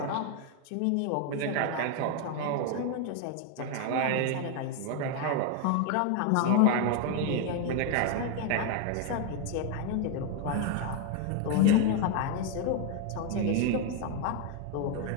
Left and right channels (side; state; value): both; different; correlation 0.01